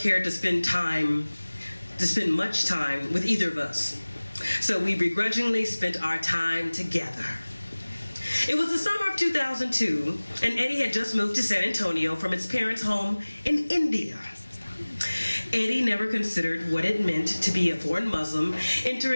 cared to spend much time with either of us. So we begrudgingly spent our time together. It was the summer of 2002, and Eddie had just moved to San Antonio from his parents' home in India. Eddie never considered what it meant to be a foreign Muslim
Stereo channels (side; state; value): both; inverted; correlation -1.00